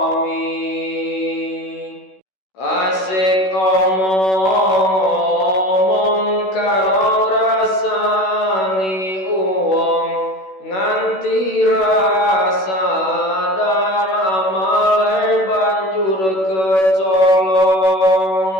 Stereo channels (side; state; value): right; late; 16 ms